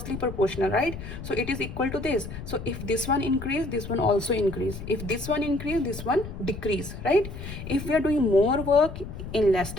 proportional, right? So it is equal to this. So if this one increase, this one also increase. If this one increase, this one decrease, right? If we are doing more work in less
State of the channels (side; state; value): left; noise; rumble, 10 dB below the sound